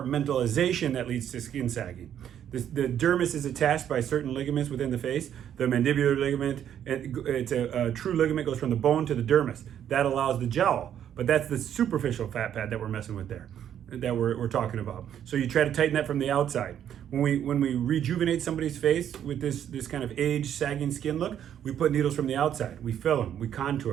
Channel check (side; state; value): left; quieter; 9.8 dB